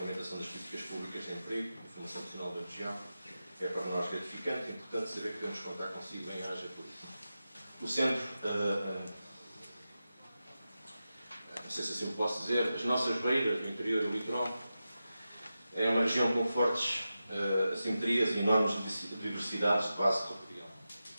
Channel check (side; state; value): both; inverted; correlation -0.92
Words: das políticas públicas de emprego e formação profissional da região. É para nós gratificante e importante saber que podemos contar consigo em haja por isso. O Centro, não sei se assim o posso dizer, as nossas beiras, o interior e o litoral, é uma região com fortes assimetrias e enormes diversidades de base territorial.